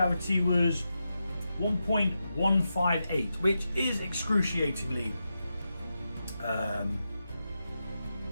was 1.158, which is excruciatingly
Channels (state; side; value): inverted; both; correlation -0.88